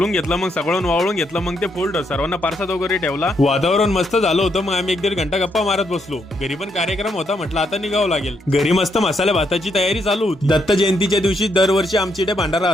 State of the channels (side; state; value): both; normal; correlation 0.77